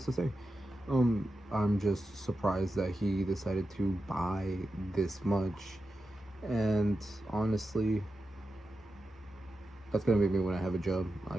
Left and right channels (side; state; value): both; normal; correlation 0.90